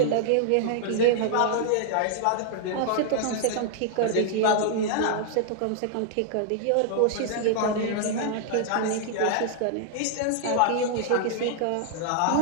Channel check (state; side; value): different; both; correlation -0.01